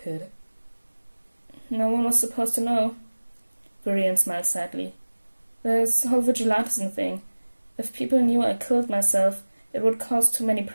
kid? No one was supposed to know. Viridian smiled sadly. This whole vigilantism thing. If people knew I killed myself, it would cause too many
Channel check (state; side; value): inverted; both; correlation -1.00